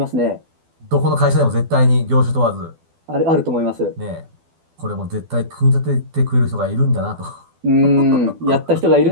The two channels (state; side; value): late; left; 12 ms